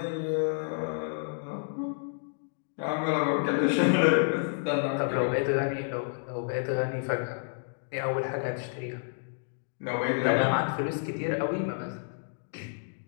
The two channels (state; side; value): silent; right; digital silence